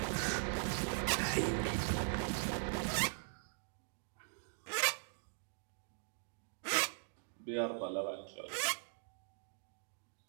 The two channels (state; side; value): silent; left; digital silence